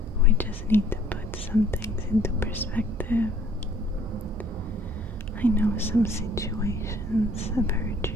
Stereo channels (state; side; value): normal; both; correlation 0.58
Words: We just need to put some things into perspective. I know some situations have hurt